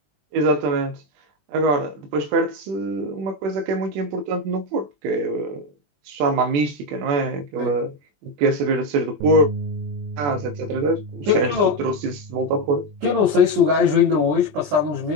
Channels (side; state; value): left; late; 21 ms